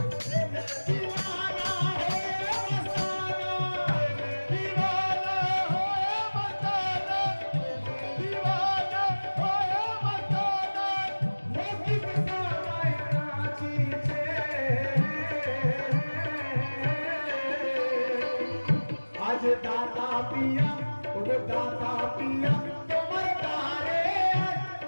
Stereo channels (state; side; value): inverted; both; correlation -1.00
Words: आज दाता पिया, ओगो दाता पिया तुम्हारे तारे,